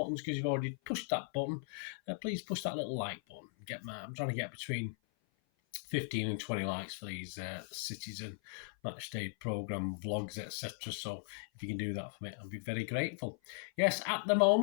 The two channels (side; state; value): right; silent; 52 dB below the other